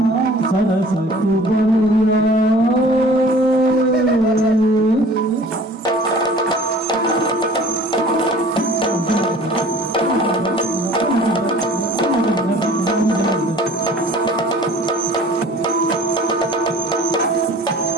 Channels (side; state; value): both; normal; correlation 0.47